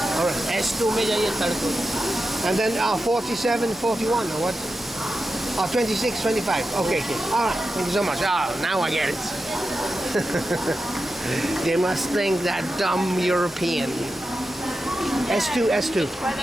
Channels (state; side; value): normal; both; correlation 0.90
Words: All right. S2 में जाइए third coach. And then 47, 41 or what? 26, 25. Okay. All right. Thank you so much. Now I get it. They must think that dumb European. S2. Quite